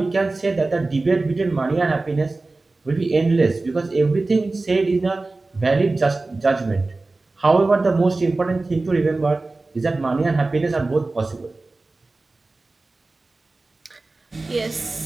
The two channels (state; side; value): quieter; left; 3.3 dB